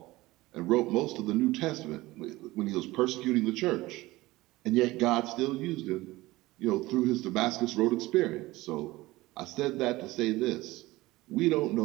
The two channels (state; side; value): quieter; left; 19.1 dB